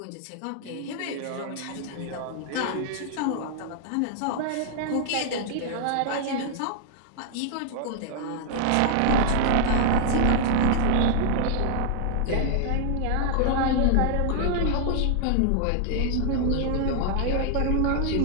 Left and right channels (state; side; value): different; both; correlation 0.00